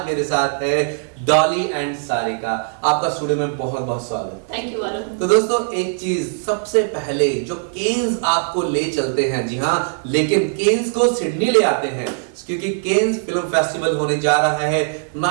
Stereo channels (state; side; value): silent; left; digital silence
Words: मेरे साथ है डॉली एंड सारिका। आपका स्टूडियो में बहुत बहुत स्वागत। Thank you Varun. तो दोस्तों एक चीज सबसे पहले जो केन्स आपको ले चलते हैं, जी हाँ, लेकिन केन्स को सिडनी ले आते हैं क्योंकि केन्स फिल्म फेस्टिवल होने जा रहा है